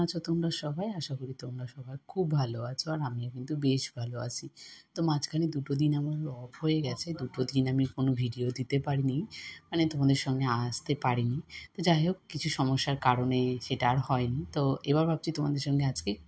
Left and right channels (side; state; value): both; identical; correlation 1.00